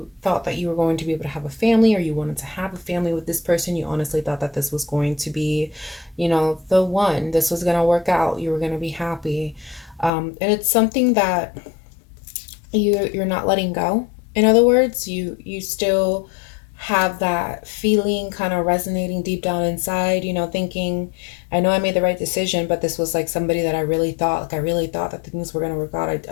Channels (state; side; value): drops out; right; at 10.1 s